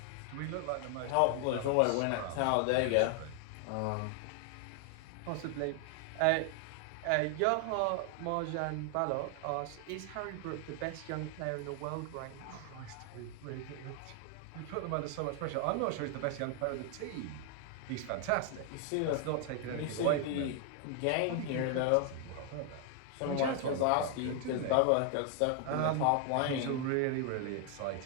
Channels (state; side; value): different; both; correlation 0.00